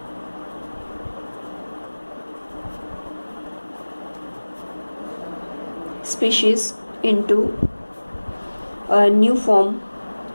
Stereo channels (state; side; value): inverted; both; correlation -1.00